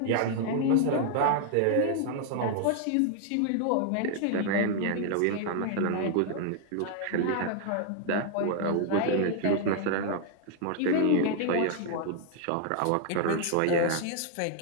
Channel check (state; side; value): different; both; correlation 0.00